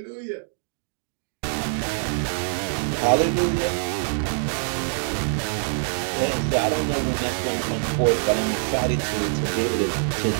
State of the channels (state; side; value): silent; left; 62 dB below the other